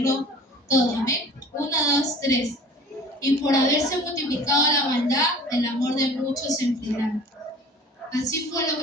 todo. Amén. 1, 2, 3. Y por haberse multiplicado la maldad, el amor de muchos se enfriará. Así fue lo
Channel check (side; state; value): both; normal; correlation 0.45